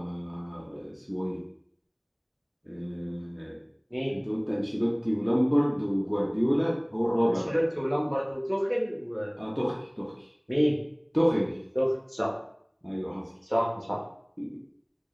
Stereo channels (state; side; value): identical; both; correlation 1.00